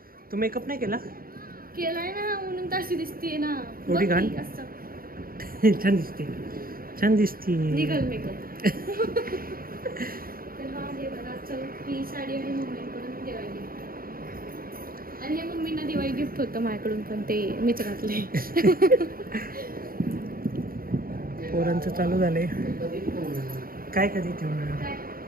तू मेकअप नाही केला? केलाय ना, म्हणून तशी दिसते ना. एवढी घाण? छान दिसते, छान दिसते. निघल मेकअप. तर हा हे बघा, चल ही साडी आणि मम्मीकडून दिवाळी गिफ्ट. आणि हे मम्मींना दिवाळी गिफ्ट होतं माझ्याकडून, पण ते मीच घातले. पोरांचं चालू झालंय. काय कधी ठेवणार?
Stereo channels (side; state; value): left; late; 0.42 ms